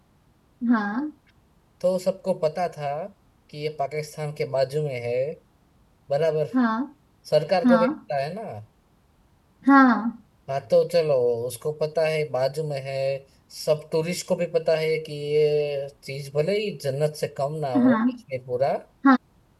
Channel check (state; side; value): identical; both; correlation 1.00